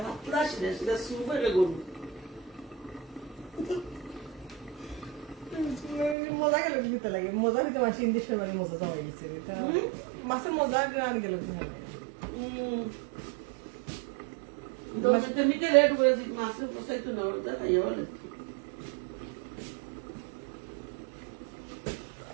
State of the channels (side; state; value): left; drops out; at 6.2 s